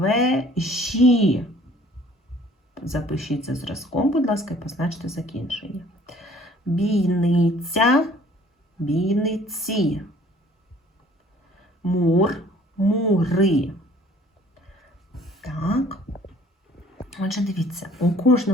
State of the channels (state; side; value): normal; both; correlation 0.55